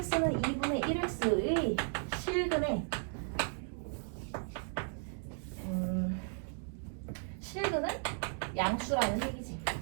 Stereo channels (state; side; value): silent; left; 54 dB below the other